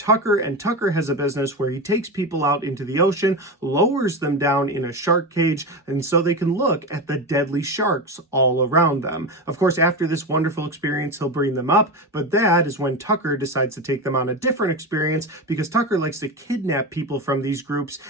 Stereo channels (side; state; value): both; normal; correlation 0.19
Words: and Tucker has a business where he takes people out into the ocean, lowers them down in a shark cage, and so they can look at the deadly sharks all around them. Of course, after this wonderful experience, he'll bring them up, but that is when Tucker decides to take them on a different experience, because Tucker likes to kidnap people from these groups